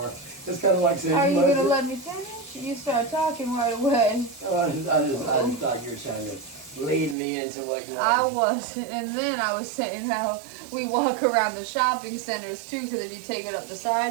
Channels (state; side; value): drops out; left; at 7.2 s